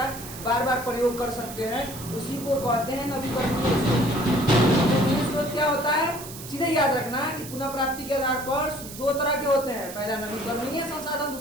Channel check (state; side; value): noise; right; hiss, 13 dB below the sound